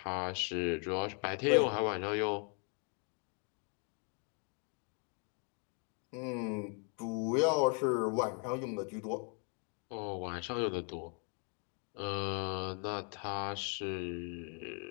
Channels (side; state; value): right; quieter; 39.6 dB